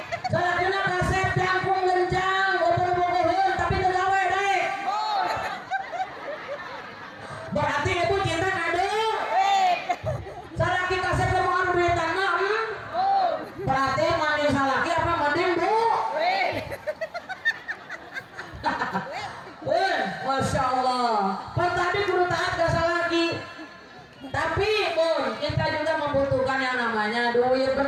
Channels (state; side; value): identical; both; correlation 1.00